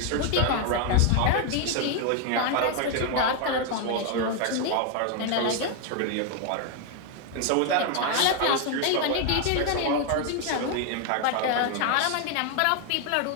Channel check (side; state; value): both; different; correlation 0.01